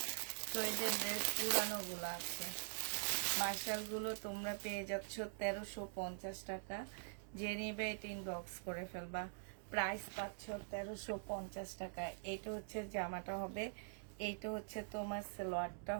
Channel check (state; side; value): silent; left; digital silence